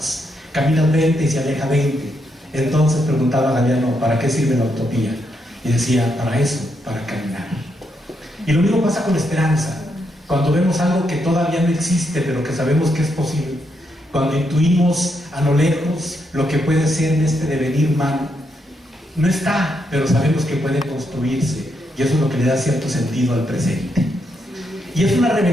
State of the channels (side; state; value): both; normal; correlation 0.79